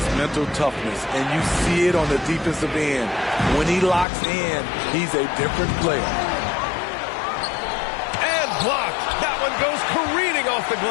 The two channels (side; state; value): right; drops out; at 4.0 s